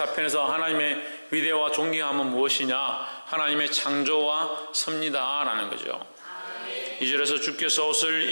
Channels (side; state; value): both; inverted; correlation -1.00